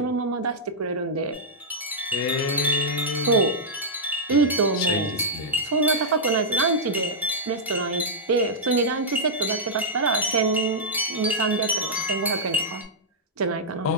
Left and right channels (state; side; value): normal; both; correlation -0.08